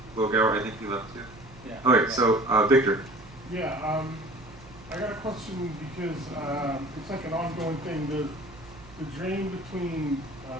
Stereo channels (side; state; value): right; noise; hum, 21 dB below the sound